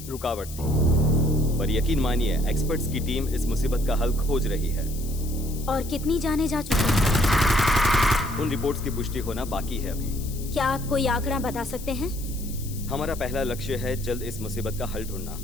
रुकावट थी, पर यकीन मानिए एक्सपर्ट्स की टीम इस मुसीबत का हल खोज रही है। और कितनी जाने जा चुकी है? उन रिपोर्ट्स की पुष्टि होना बाकी है अभी। क्या आप कोई आंकड़ा बता सकते हैं? हमारा पहला लक्ष्य है जल्द इस मुसीबत का हल ढूंढना।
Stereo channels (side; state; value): left; noise; hiss, 14 dB below the sound